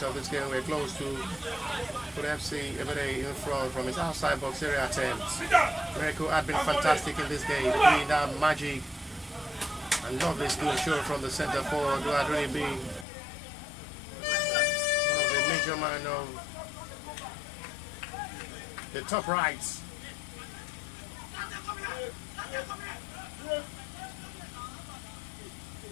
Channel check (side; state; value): right; drops out; at 13.1 s